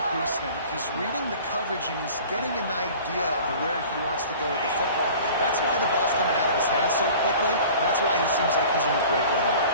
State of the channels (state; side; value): inverted; both; correlation -0.44